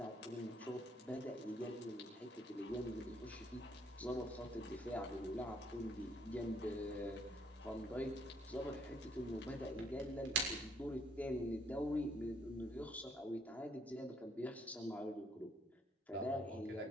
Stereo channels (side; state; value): both; normal; correlation 0.67